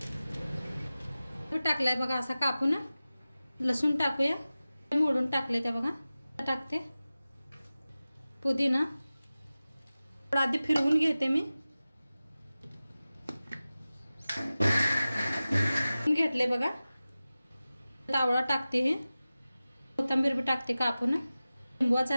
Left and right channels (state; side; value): inverted; both; correlation -0.96